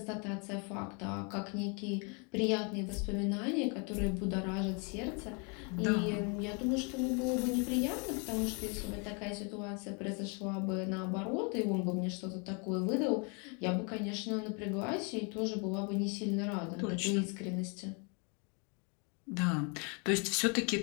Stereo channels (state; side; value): quieter; right; 34.9 dB